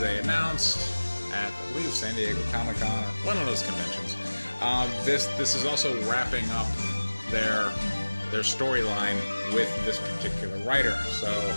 announced at, I believe, San Diego Comic Con or one of those conventions, this is also wrapping up their storyline with this particular writer. So,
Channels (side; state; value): both; inverted; correlation -1.00